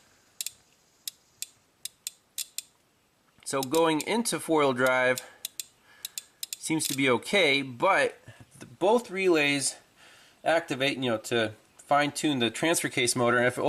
So going into four-wheel drive seems to be okay, but both relays activate, to fine-tune the transfer case motor, and if it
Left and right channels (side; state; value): both; identical; correlation 1.00